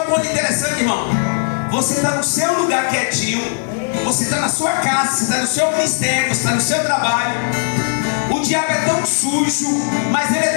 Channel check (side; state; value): right; silent; 60 dB below the other